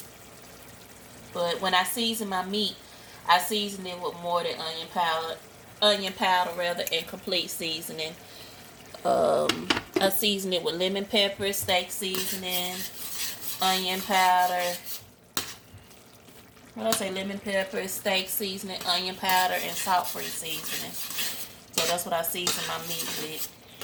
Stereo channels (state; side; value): identical; both; correlation 1.00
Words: But when I season my meat, I season it with more than onion powder rather, and complete seasoning. I season it with lemon pepper, steak seasoning, onion powder. What did I say? Lemon pepper, steak seasoning, onion powder, and salt-free seasoning. So that's what I season my meat with.